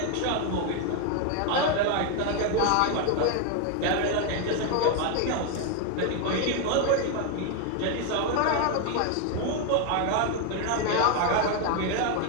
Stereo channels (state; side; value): different; both; correlation 0.01